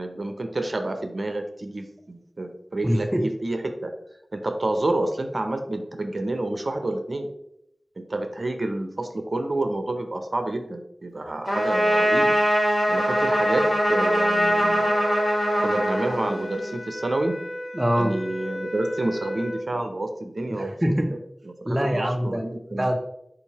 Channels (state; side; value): normal; both; correlation 0.96